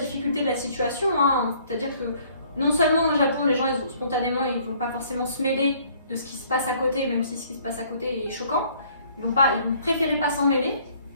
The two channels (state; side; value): inverted; both; correlation -0.60